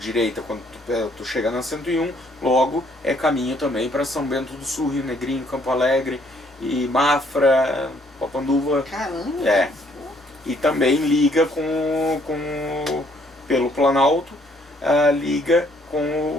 quando tu chega na 101, logo é caminho também para São Bento do Sul, Rio Negrinho, Campo Alegre, e Mafra, Papanduva. Caramba! É. E também liga pelo Planalto, liga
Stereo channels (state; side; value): normal; both; correlation 0.66